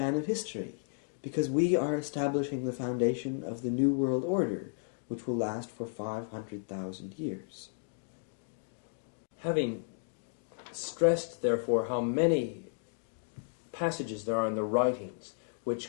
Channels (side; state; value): right; silent; digital silence